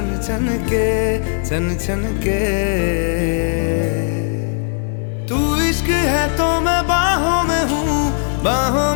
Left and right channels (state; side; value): silent; right; digital silence